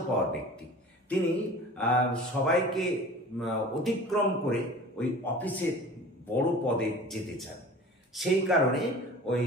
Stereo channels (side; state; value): both; normal; correlation 0.41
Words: ব্যক্তি। তিনি সবাইকে অতিক্রম করে ওই অফিসের বড় পদে যেতে চান। সেই কারণে ওই